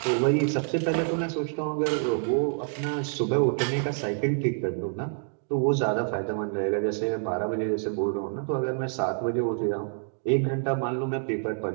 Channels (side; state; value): left; silent; digital silence